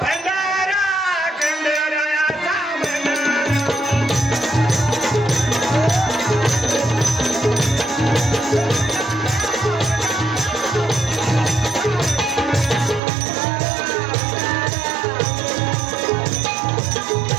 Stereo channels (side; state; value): left; drops out; at 13.0 s